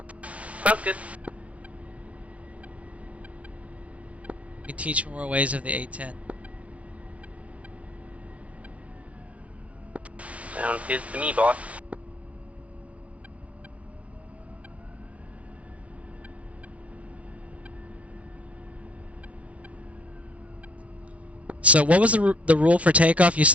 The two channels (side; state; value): left; late; 0.065 ms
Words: Sounds good. You can teach me more ways of the A10. Sounds good to me, boss. So what was the rule for takeoff? You